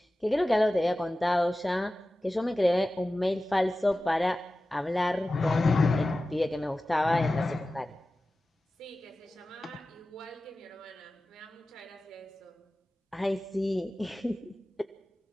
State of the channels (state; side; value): normal; both; correlation 0.96